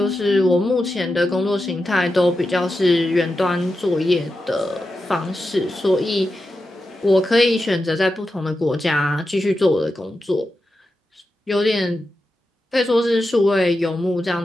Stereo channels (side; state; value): both; normal; correlation 0.90